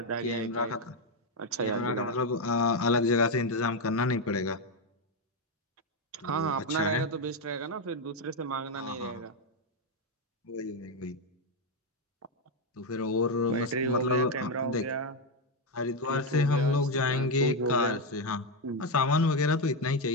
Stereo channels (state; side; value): normal; both; correlation 0.05